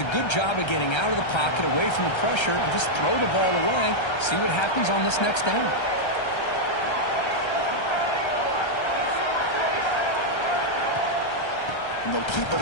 a good job of getting out of the pocket, away from the pressure, and just throw the ball away. See what happens on this next down. And they'll keep it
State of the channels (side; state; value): right; late; 1.3 ms